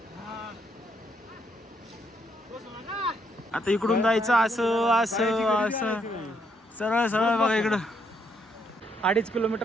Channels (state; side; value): normal; both; correlation 0.74